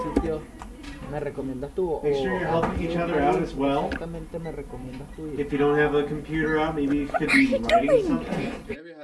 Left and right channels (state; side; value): identical; both; correlation 1.00